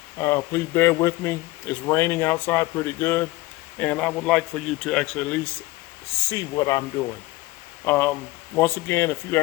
Please bear with me. It's raining outside pretty good, and I would like for you to actually at least see what I'm doing. Once again, if you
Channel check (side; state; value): right; quieter; 19.9 dB